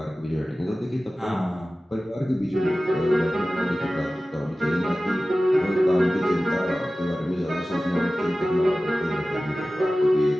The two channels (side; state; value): both; normal; correlation 0.96